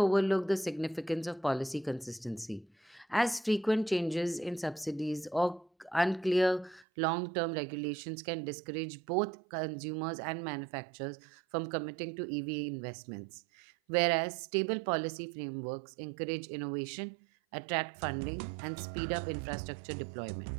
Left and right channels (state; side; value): drops out; left; at 6.9 s